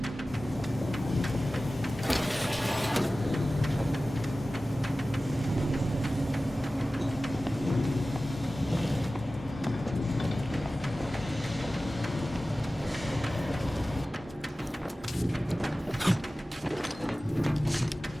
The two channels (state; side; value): normal; both; correlation 0.96